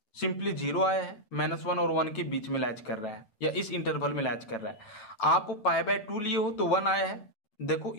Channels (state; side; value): late; right; 8.6 ms